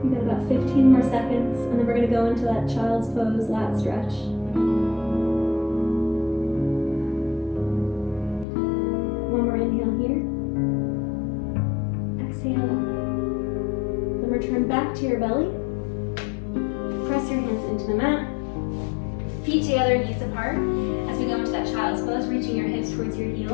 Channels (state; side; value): drops out; right; at 8.5 s